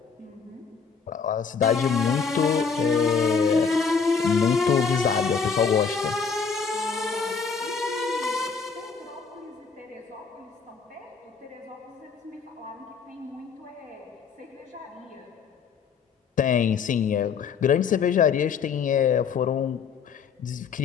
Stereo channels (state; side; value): quieter; right; 5.8 dB